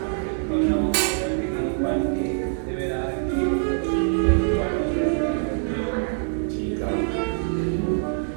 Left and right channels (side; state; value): left; silent; digital silence